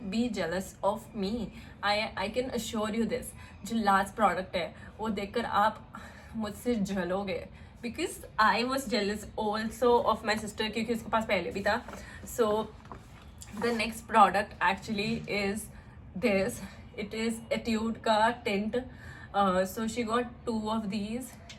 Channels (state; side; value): identical; both; correlation 1.00